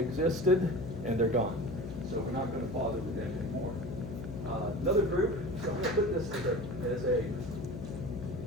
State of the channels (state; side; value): noise; left; hum, 9 dB below the sound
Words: and they're gone. So we're not going to bother with them anymore. Another group, so I'm going to put this as a